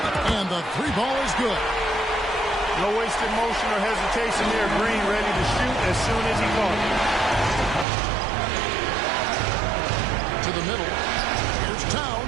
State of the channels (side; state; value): left; drops out; at 7.9 s